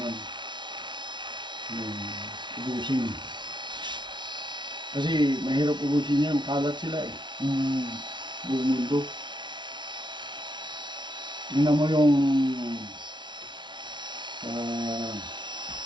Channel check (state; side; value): late; left; 0.22 ms